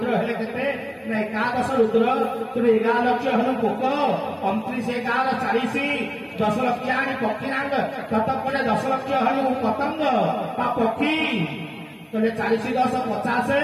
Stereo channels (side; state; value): both; identical; correlation 1.00